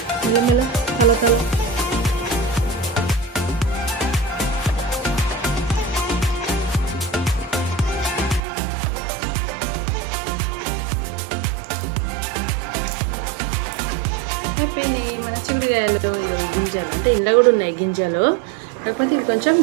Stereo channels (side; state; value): left; drops out; at 8.4 s